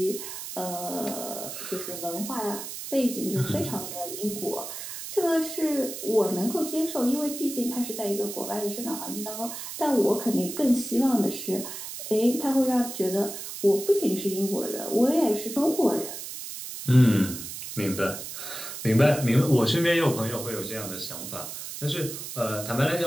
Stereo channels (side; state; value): right; noise; hiss, 8 dB below the sound